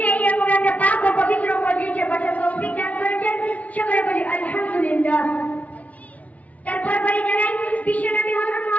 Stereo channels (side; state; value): right; late; 0.069 ms